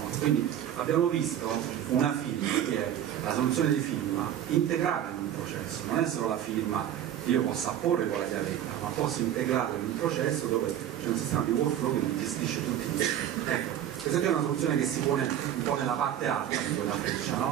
Quindi abbiamo visto una firma che è la soluzione di firma integrata in un processo, non è solo la firma che io possa apporre con la chiavetta, ma posso integrarla in un processo dove c'è un sistema di workflow che mi gestisce tutti i tempi. Ecco, questa è una soluzione che si pone un po' nella parte alta di quella freccia,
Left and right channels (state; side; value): quieter; left; 10.7 dB